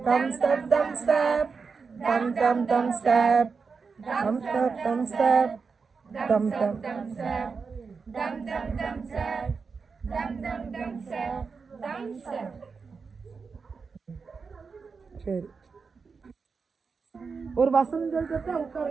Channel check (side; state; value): left; quieter; 5.1 dB